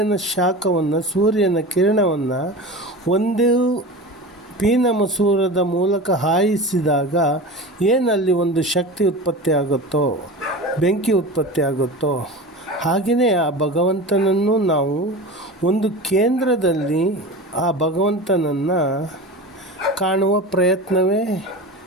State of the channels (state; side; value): normal; both; correlation 0.31